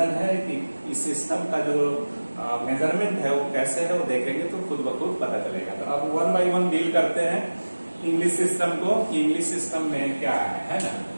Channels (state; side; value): inverted; both; correlation -1.00